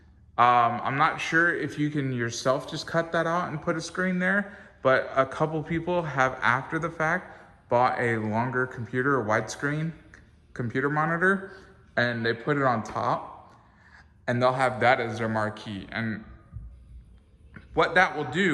I'm not sure if you can yourself just cut that out and put a screen there, but a couple people have, after the fact, bought a longer computer, a widescreen computer monitor, and they put it on top, and they'll have that as their marquee. And what that will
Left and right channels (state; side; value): identical; both; correlation 1.00